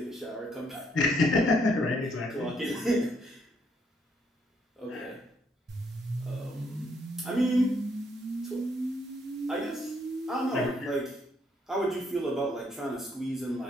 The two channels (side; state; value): both; normal; correlation 0.72